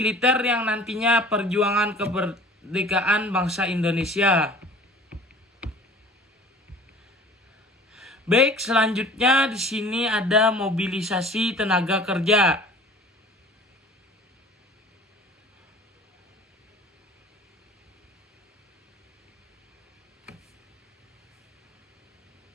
yang nantinya perjuangan kemerdekaan bangsa Indonesia. Baik, selanjutnya di sini ada mobilisasi tenaga kerja.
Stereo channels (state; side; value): normal; both; correlation 0.45